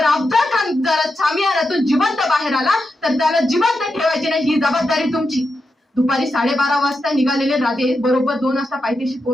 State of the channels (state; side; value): normal; both; correlation 0.87